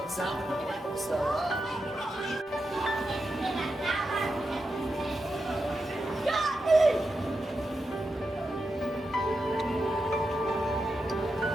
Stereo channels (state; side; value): normal; both; correlation 0.88